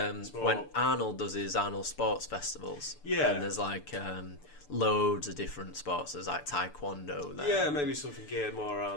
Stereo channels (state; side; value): late; right; 6.8 ms